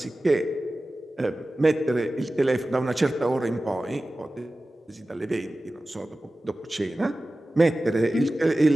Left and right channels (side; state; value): both; normal; correlation 0.96